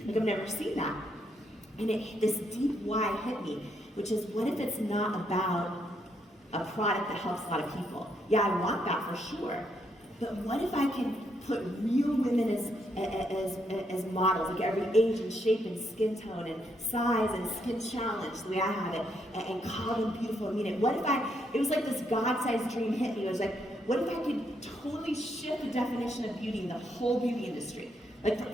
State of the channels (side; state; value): both; normal; correlation 0.76